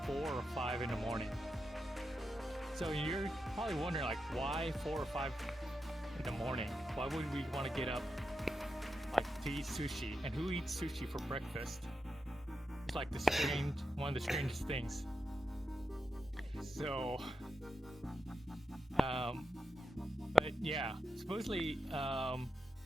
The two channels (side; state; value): both; normal; correlation 0.88